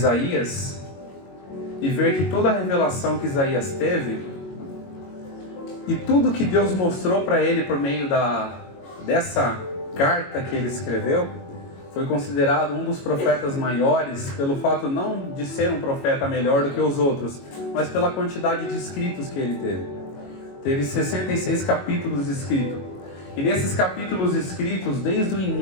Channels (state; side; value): late; right; 22 ms